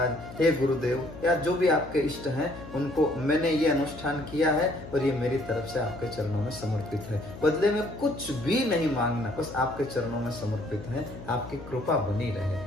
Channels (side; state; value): left; noise; hum, 14 dB below the sound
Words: हे गुरुदेव, या जो भी आपके इष्ट हैं उनको मैंने ये अनुष्ठान किया है और ये मेरी तरफ से आपके चरणों में समर्पित है। बदले में कुछ भी नहीं मांगना, बस आपके चरणों में समर्पित है। आपकी कृपा बनी